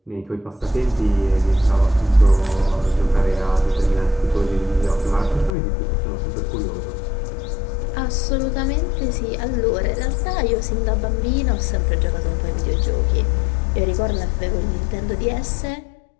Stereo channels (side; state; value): right; drops out; at 5.6 s